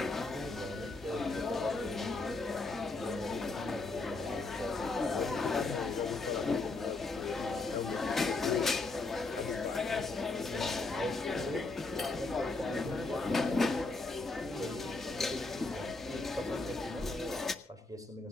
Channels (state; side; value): quieter; right; 3.4 dB